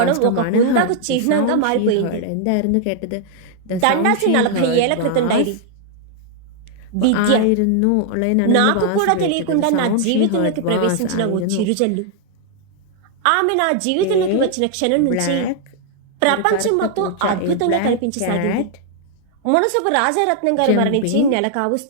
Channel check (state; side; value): different; both; correlation 0.00